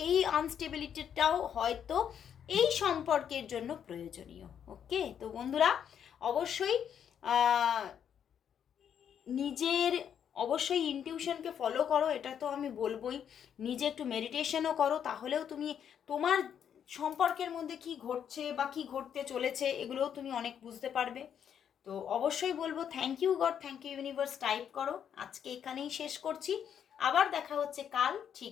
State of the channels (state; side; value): quieter; right; 8.6 dB